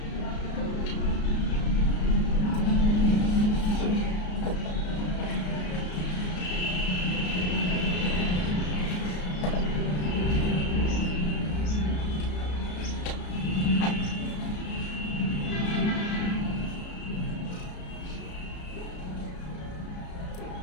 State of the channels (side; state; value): right; late; 33 ms